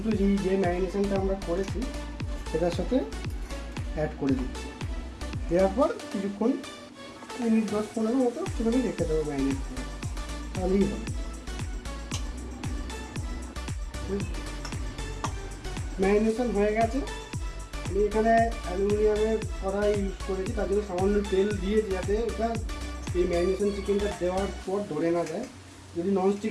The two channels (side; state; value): both; identical; correlation 1.00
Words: যে ম্যারিনেশনটা আমরা করেছি সেটার সাথে অ্যাড করে দিচ্ছি। দেওয়ার পর কিছুক্ষণ মিনিট 10-15 মতো সেখানে রেখে দেবো ম্যারিনেট করে, তাহলেই হবে। ম্যারিনেশন হয়ে গেছে। আমি এখানে অ্যালুমিনিয়ামের কড়াই ইউজ করেছি, তার জন্য সামান্য তেল দিয়ে, যাতে এটা এই ম্যারিনেশন চিকেনটা দেওয়ার পর ধরে না যায়। যদি